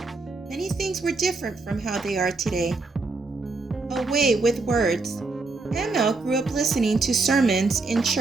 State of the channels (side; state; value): left; quieter; 3.6 dB